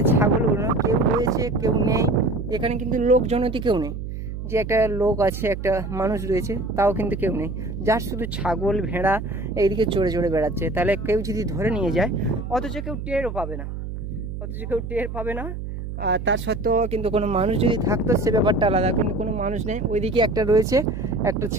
ছাগলগুলো কেউ রয়েছে কেউ নেই, এখানে কিন্তু লোকজনতি কেউ নেই, যে একটা লোক আছে একটা মানুষ রয়েছে তাও কিন্তু কেউ নেই, যার শুধু ছাগল ভেড়া এইদিকে চড়ে চড়ে বেড়াচ্ছে। তাহলে কেউ যদি ধরে নিয়ে যায় অথচ কেউ টেরও পাবে না, আর তার সত্ত্বেও কিন্তু কোনো মানুষ যদি থাকতো সে ব্যাপারটা আলাদা, কিন্তু কোনো মানুষ নেই। ওইদিকে একটা রয়েছে, একটা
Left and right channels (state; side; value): noise; right; hum, 7 dB below the sound